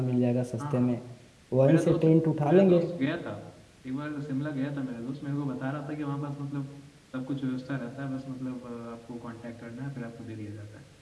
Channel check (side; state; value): both; identical; correlation 1.00